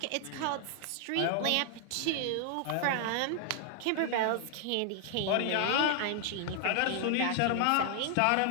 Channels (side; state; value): both; different; correlation 0.00